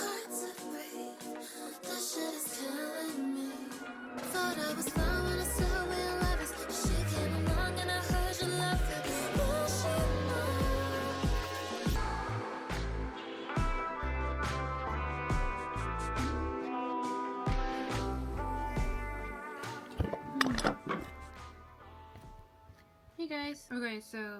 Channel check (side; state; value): both; identical; correlation 1.00